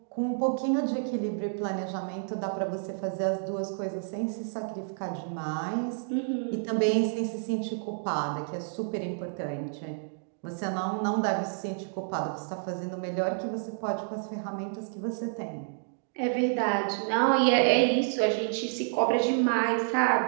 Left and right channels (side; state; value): left; silent; digital silence